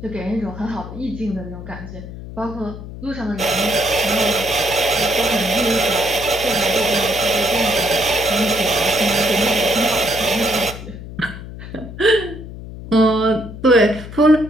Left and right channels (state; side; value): noise; left; hum, 12 dB below the sound